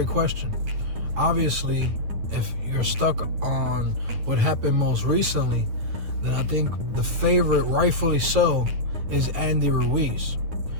question. Obviously, if you're stuck on what happened most recently, then I think the favorite, rightfully so, is Andy Ruiz.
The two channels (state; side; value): late; left; 9.3 ms